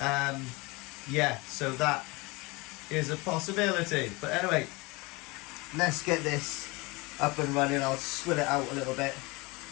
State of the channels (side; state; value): right; quieter; 24.9 dB